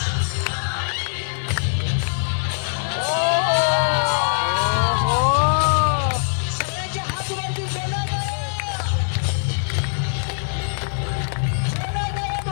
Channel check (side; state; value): right; silent; 64 dB below the other